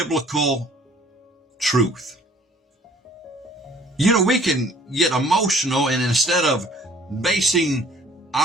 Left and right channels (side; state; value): both; normal; correlation 0.55